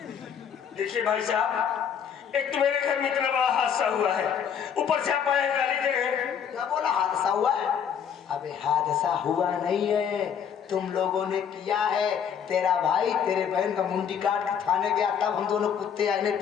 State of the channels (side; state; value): right; quieter; 7.8 dB